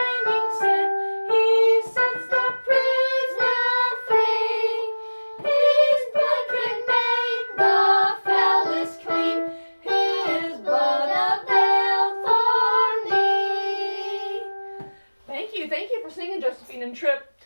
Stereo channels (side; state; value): both; inverted; correlation -1.00